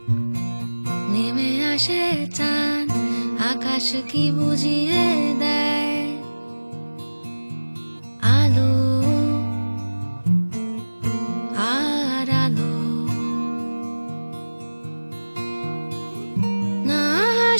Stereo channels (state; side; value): inverted; both; correlation -1.00